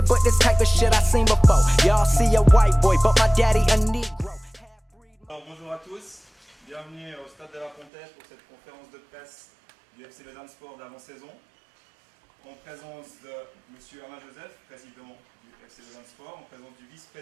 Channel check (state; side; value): drops out; left; at 7.9 s